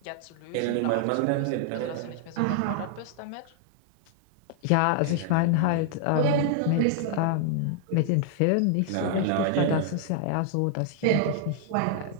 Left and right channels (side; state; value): both; different; correlation -0.01